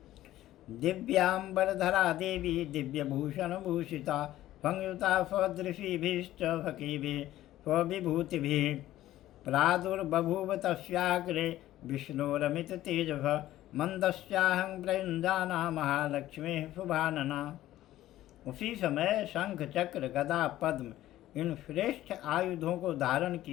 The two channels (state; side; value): quieter; right; 14.4 dB